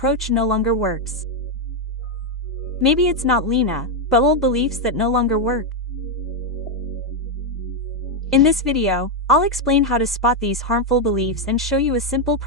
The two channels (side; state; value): both; normal; correlation 0.02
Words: no longer works. Maybe it's not Lena, but old beliefs that no longer work. In this video, I'll explain how to spot these harmful beliefs and show you a simple